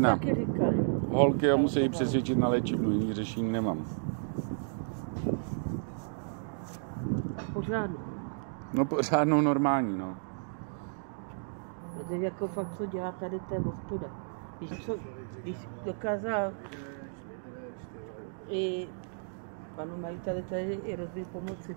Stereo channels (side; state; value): left; silent; digital silence